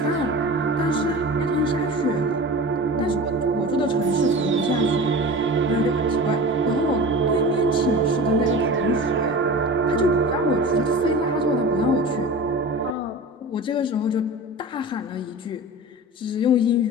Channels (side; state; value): both; normal; correlation 0.33